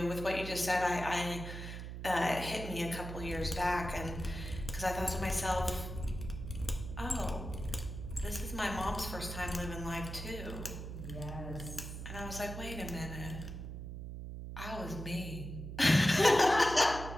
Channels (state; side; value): noise; right; hum, 8 dB below the sound